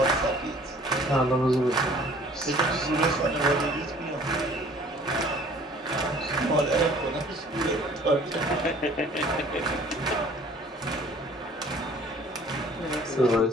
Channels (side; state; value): both; normal; correlation 0.53